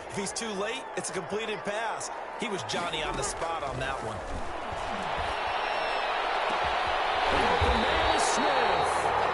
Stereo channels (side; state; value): both; identical; correlation 1.00